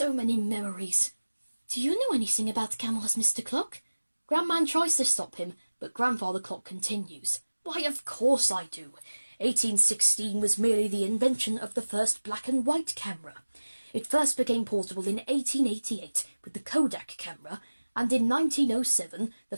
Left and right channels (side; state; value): both; inverted; correlation -1.00